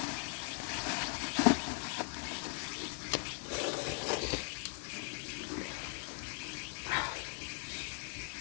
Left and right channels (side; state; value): right; silent; 52 dB below the other